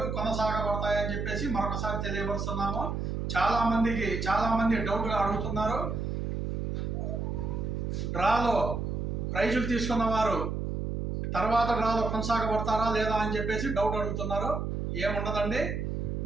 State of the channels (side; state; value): right; noise; hum, 2 dB below the sound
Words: కొనసాగబడతాయని చెప్పేసి మరొకసారి తెలియపరుస్తున్నాము. చాలామంది డౌట్గా అడుగుతున్నారు, డ్రాలో ప్రైజులు తీసుకున్న వారు తర్వాత డ్రాలో కొనసాగబడతారా లేదా అని చెప్పేసి డౌట్ అడుగుతున్నారు. ఏముండదండి,